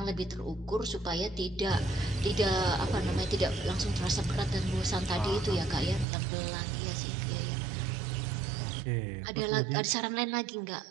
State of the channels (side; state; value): left; drops out; at 6.1 s